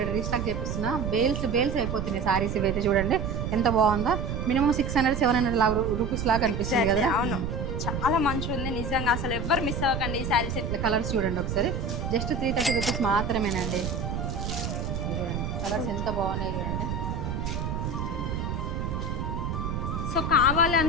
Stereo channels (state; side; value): noise; right; rumble, 3 dB below the sound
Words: రీస్టాక్ చేపిస్తున్నా. బేల్స్ అయిపోతున్నాయి శారీస్. ఇవైతే చూడండి ఎంత బాగుందో. మినిమం 600-700 రూపీస్ లాగా అనిపిస్తుంది కదా. అవును, చాలా మంచిగా ఉంది నిజంగా. అసలు ఎవ్వరు మిస్ అవ్వకండి ఈ శారీస్. ఇట్లా కలర్స్ చూడండి ఒకసారి. జస్ట్ 330 రూపీస్ మాత్రమేనండి. చూడండి కలర్స్ ఎంత బాగున్నాయి చూడండి. సో కావాలి